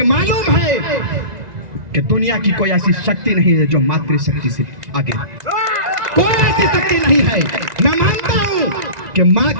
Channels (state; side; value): late; left; 2.0 ms